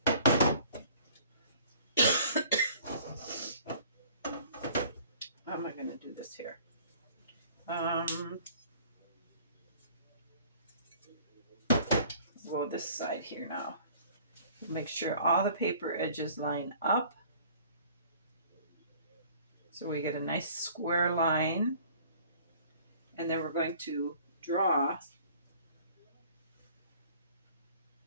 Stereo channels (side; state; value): both; inverted; correlation -0.52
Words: how am I going to do this here? Go this side here now. Make sure all the paper edges line up, so we get a nice square line. And then we're going to draw